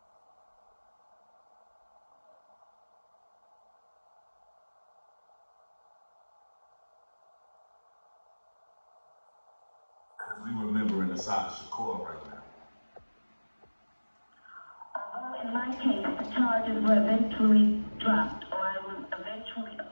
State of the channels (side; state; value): both; inverted; correlation -1.00